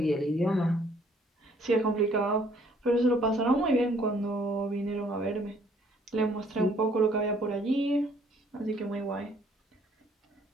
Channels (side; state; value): both; normal; correlation 0.62